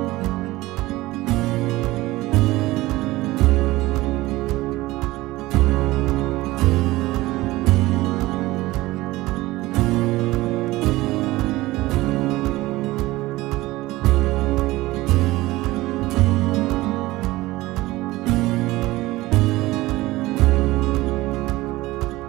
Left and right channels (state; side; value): quieter; left; 18.8 dB